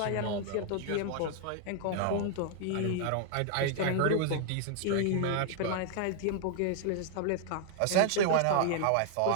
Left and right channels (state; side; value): different; both; correlation 0.00